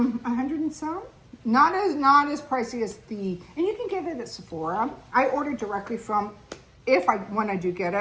and some. Not as pricey as and you can get it at Sephora. I ordered directly from, when I do get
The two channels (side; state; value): both; identical; correlation 1.00